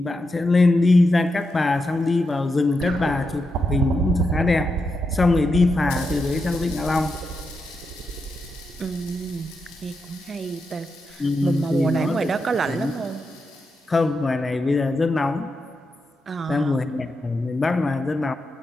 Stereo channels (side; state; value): both; normal; correlation 0.86